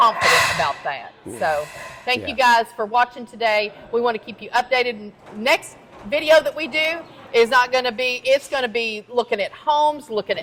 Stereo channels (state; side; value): identical; both; correlation 1.00